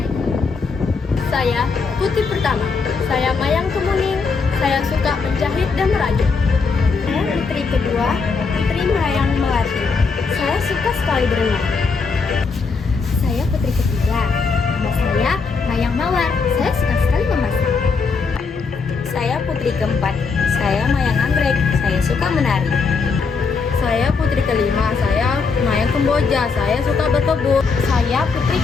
Saya putri pertama, saya Mayang Kemuning, saya suka menjahit dan merajut. Saya putri kedua, Putri Mayang Melati, saya suka sekali berenang. Saya putri ketiga. Nama saya Mayang Mawar. Saya suka sekali memasak. Saya putri keempat. Saya Mayang Anggrek. Saya suka menari. Saya putri kelima, saya Mayang Kemboja, saya suka berkebun. Saya putri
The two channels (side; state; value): right; quieter; 4.8 dB